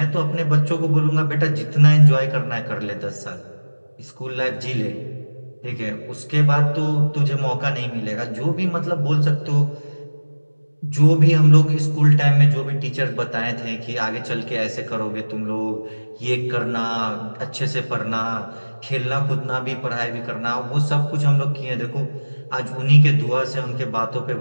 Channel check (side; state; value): both; inverted; correlation -1.00